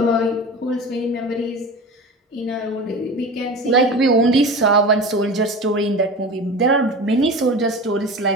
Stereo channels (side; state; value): both; normal; correlation 0.32